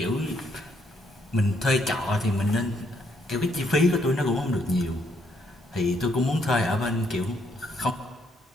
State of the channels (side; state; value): both; normal; correlation 0.72